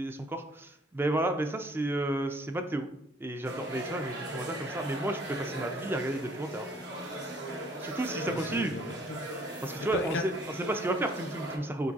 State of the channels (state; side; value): normal; both; correlation 0.59